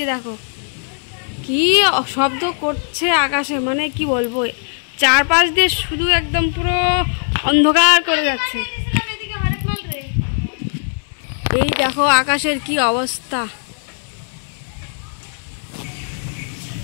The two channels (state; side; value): silent; right; digital silence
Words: দেখো কি শব্দ করছে আকাশে, মানে কি বলবো, চারপাশ দিয়ে শুধু একদম পুরো অন্ধকার করে যাচ্ছে। এই দেখো আকাশের কি অবস্থা।